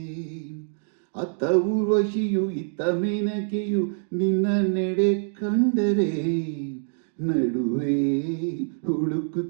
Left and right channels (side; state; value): left; silent; digital silence